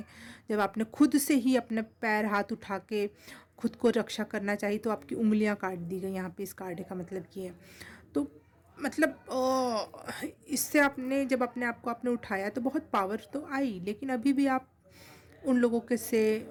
जब आपने खुद से ही अपने पैर हाथ उठा के खुद को रक्षा करना चाहिए, तो आपकी उंगलियां काट दी गई। यहाँ पे इस कार्ड का मतलब ये है। तो मतलब इससे आपने जब अपने आप को आपने उठाया तो बहुत पावर तो आई, लेकिन अभी भी आप उन लोगों के से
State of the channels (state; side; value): identical; both; correlation 1.00